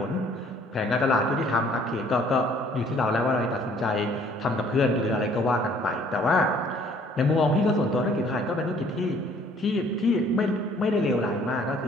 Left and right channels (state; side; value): normal; both; correlation 0.58